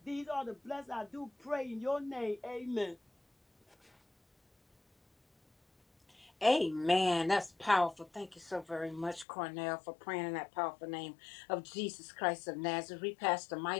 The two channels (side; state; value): right; drops out; at 9.2 s